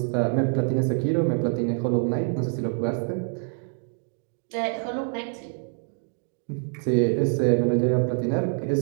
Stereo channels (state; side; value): silent; left; 55 dB below the other